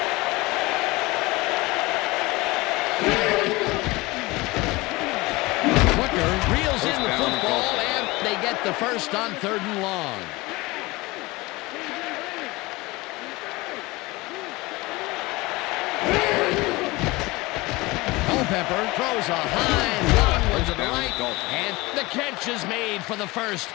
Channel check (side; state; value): right; quieter; 22.2 dB